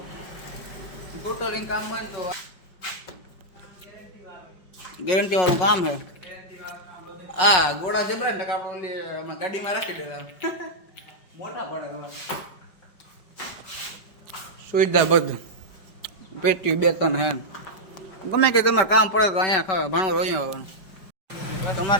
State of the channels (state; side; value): late; right; 5.2 ms